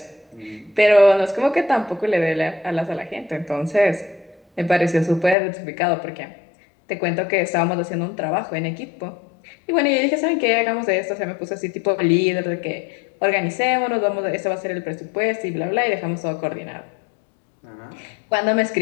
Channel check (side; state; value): right; drops out; at 5.4 s